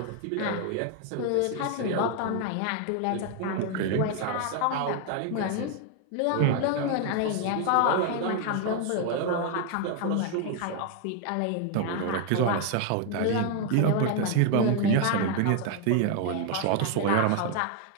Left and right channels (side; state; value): both; different; correlation 0.00